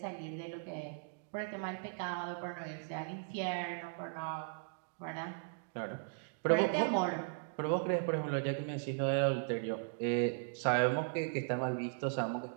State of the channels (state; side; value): silent; left; digital silence